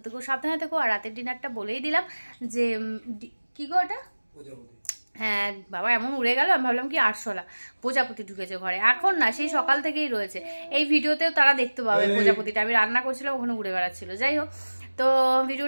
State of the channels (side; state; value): both; inverted; correlation -1.00